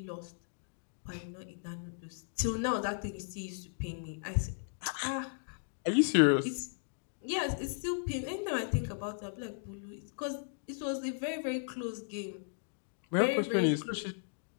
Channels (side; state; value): right; silent; digital silence